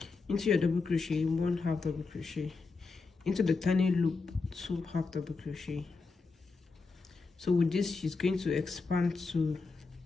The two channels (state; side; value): quieter; right; 4.2 dB